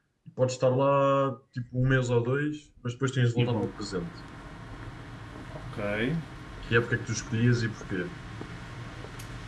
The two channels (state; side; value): identical; both; correlation 1.00